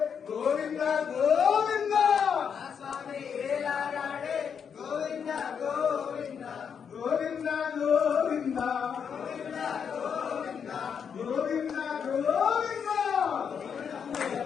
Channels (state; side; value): quieter; right; 7.1 dB